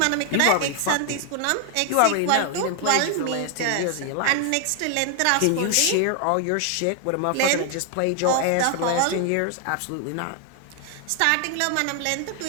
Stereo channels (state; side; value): different; both; correlation 0.00